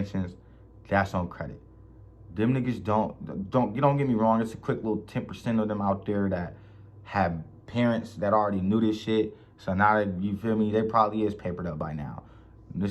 that's on credit. Them niggas don't get me wrong, it's a quick little 10% of them out there that have parents that already knew this shit. So now that, you feel me, they probably is papered up by now.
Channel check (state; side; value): identical; both; correlation 1.00